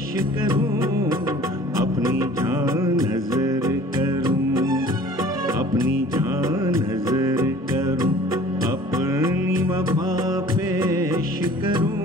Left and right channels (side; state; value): both; normal; correlation 0.48